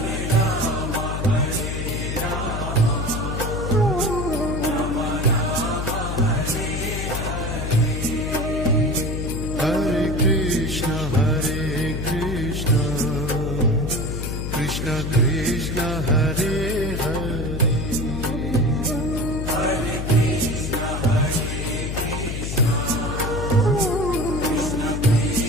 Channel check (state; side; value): noise; left; hum, 3 dB below the sound